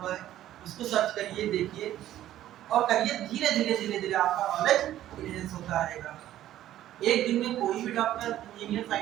है, उसको सर्च करिए, देखिए और करिए, धीरे धीरे आपका नॉलेज इनहेंस होता रहेगा। एक दिन में कोई भी डॉक्टर इंजीनियर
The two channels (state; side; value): quieter; left; 12.9 dB